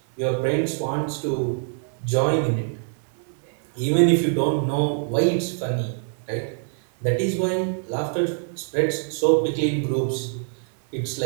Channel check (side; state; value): left; silent; 62 dB below the other